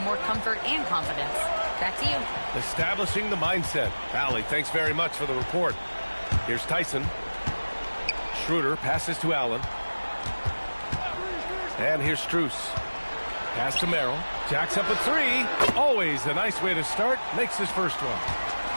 more comfort and confidence. Back to you. Establishing the mindset. Allie, thanks very much for the report. Here's Tyson. Schroeder passes to Allen. And here's Strus. Pass to Merrill. Jacks up a three. Always a nice way to start. Makes his first one.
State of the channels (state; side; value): inverted; both; correlation -1.00